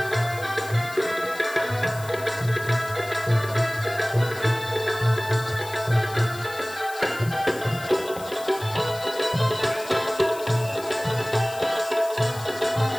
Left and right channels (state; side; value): noise; left; hiss, 16 dB below the sound